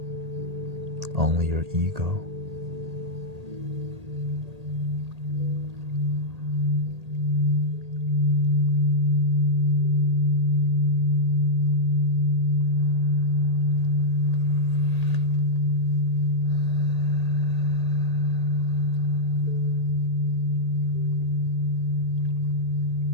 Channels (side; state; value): left; late; 1.8 ms